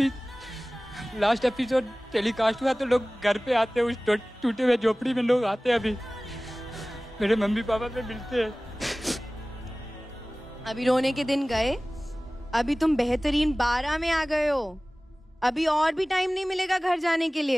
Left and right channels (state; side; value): normal; both; correlation 0.98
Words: लास्ट एपिसोड टेलीकास्ट हुआ तो लोग घर पे आते हैं, उस टूटे हुए झोपड़ी में लोग आते हैं, अभी मेरे मम्मी पापा से मिलते हैं। अभी रोने के दिन गए, अभी तुम बेहतरीन 12 में आ गए हो। अभी और भी टाइम नहीं मिलेगा घर जाने के